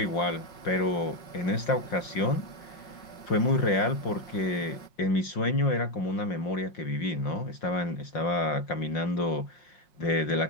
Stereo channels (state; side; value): late; right; 5.4 ms